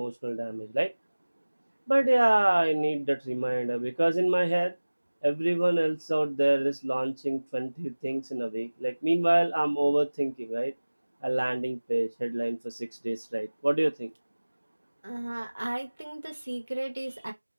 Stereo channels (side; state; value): both; inverted; correlation -1.00